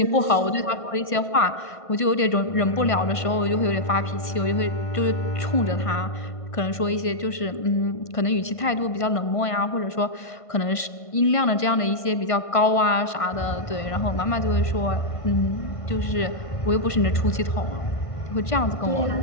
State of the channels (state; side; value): late; right; 1.5 ms